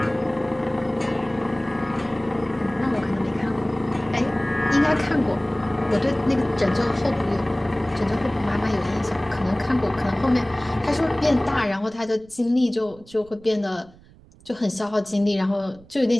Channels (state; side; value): noise; right; rumble, 25 dB below the sound